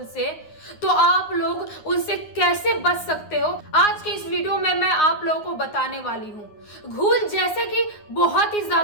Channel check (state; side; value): late; right; 9.7 ms